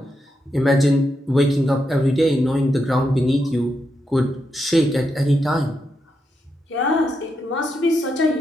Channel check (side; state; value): both; normal; correlation 0.84